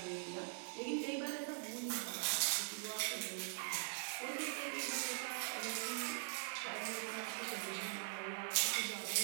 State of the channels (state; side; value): silent; left; digital silence